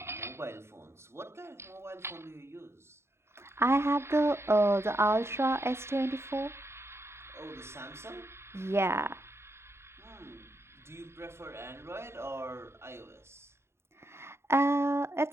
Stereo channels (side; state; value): left; late; 0.12 ms